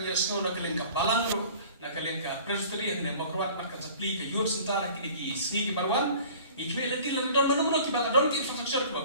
sekolah nak kelengkap balang ru nak kelengkap presbyterian yang berkuat markan supply ke youth center kini sini ke barwan ikwe leti lalu don manu ki baladon ki infrastruktur ke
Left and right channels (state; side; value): inverted; both; correlation -0.47